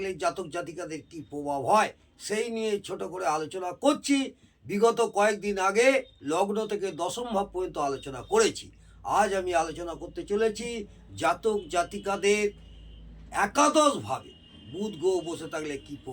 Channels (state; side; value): identical; both; correlation 1.00